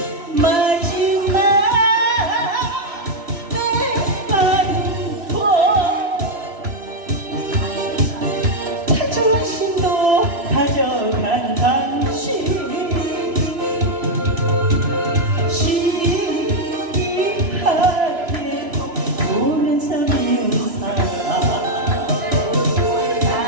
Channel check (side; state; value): left; late; 3.0 ms